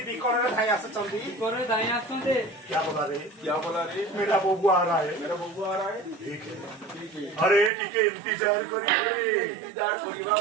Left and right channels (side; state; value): left; drops out; at 7.7 s